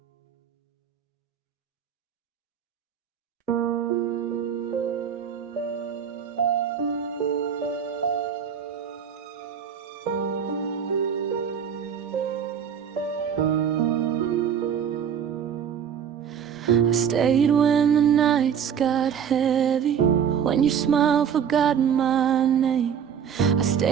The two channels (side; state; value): left; quieter; 8.0 dB